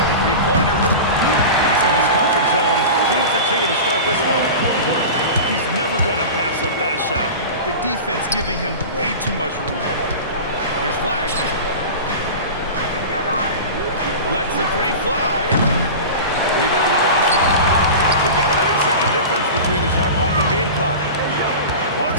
Three-pointer. He's in his comfort zone. 2 for 2 to start this one. He's never going to pass up that shot. The defense giving him way too much room. Here's Flag. Lets the three fly. Rebound by Washington. We've got a 9-second difference between the shot clock and game clock.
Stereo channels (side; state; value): both; inverted; correlation -0.30